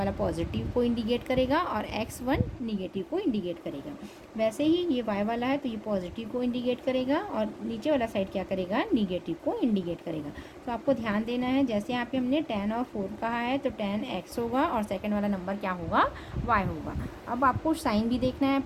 पॉजिटिव को इंडिकेट करेगा और x1 निगेटिव को इंडिकेट करेगा। वैसे ही ये y वाला है, तो ये पॉजिटिव को इंडिकेट करेगा और नीचे वाला साइड क्या करेगा, निगेटिव को इंडिकेट करेगा। तो आपको ध्यान देना है, जैसे यहाँ पे हमने 10 और 4 कहा है, तो 10 x होगा और सेकंड वाला नंबर क्या होगा, y होगा। अब आपको साइन भी देखना है,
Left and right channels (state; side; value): identical; both; correlation 1.00